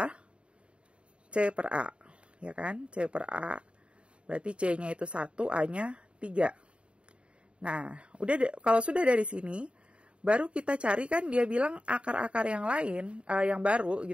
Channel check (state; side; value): late; left; 0.057 ms